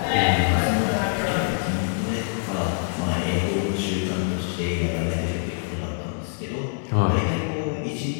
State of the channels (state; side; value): silent; right; 62 dB below the other